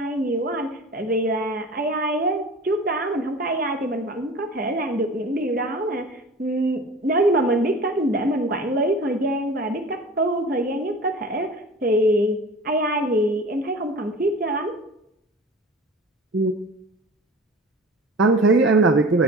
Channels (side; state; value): both; normal; correlation 0.39